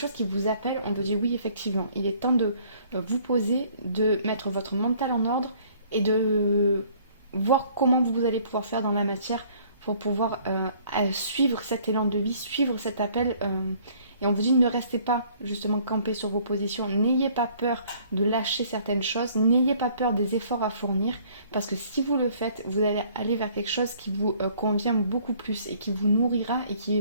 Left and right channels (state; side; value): inverted; both; correlation -0.58